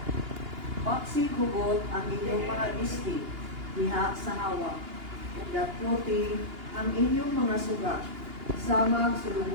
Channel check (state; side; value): late; left; 2.8 ms